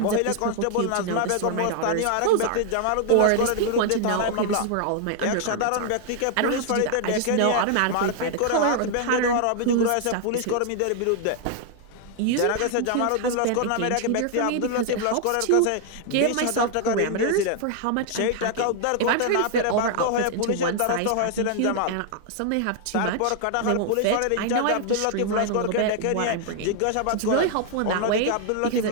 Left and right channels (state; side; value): different; both; correlation 0.00